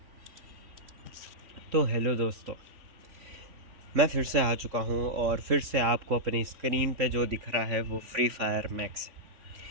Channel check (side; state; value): left; late; 3.4 ms